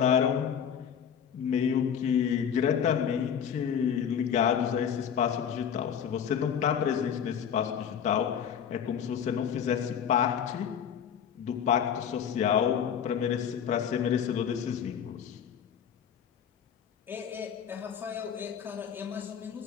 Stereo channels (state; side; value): quieter; right; 8.2 dB